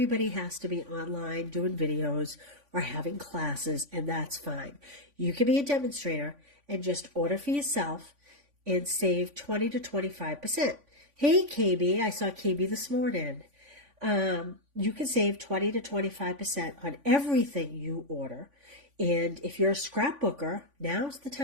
has to be online doing videos or having classes, and that's fine. You can be a demonstrator and just order for yourself and save 20 to 25%. Hey, KB, I saw KB this morning. You can save 20 to 25% on everything you order. And if you're a scrapbooker, now's the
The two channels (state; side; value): late; left; 3.5 ms